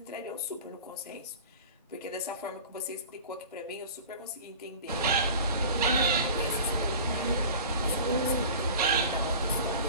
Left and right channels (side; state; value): both; inverted; correlation -0.38